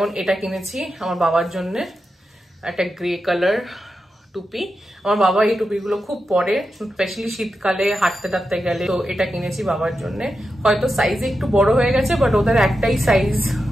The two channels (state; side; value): normal; both; correlation 0.89